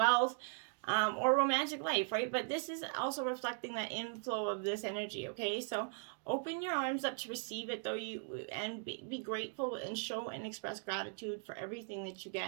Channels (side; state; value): left; silent; 52 dB below the other